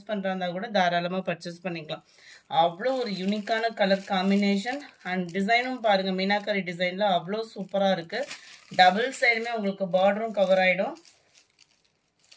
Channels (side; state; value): both; identical; correlation 1.00